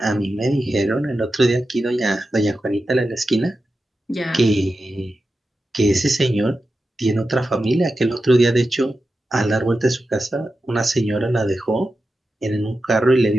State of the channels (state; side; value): normal; both; correlation 0.91